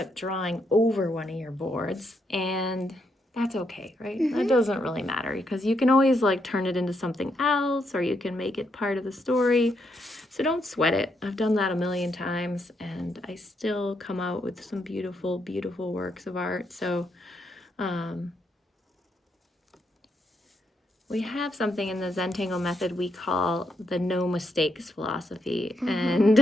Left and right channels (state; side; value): normal; both; correlation 0.78